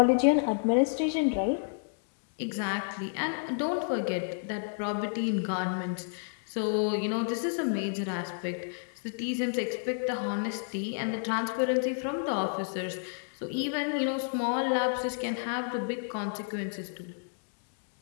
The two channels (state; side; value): silent; right; digital silence